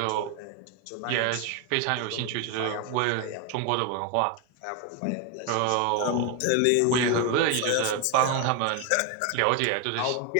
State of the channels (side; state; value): both; different; correlation 0.01